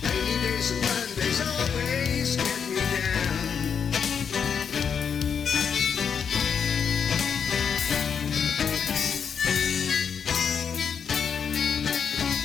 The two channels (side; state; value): right; quieter; 6.9 dB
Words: Rainy days and Mondays always get me down.